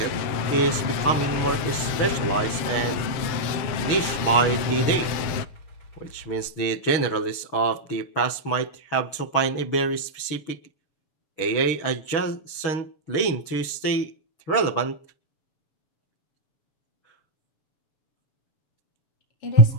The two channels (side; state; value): right; late; 7.0 ms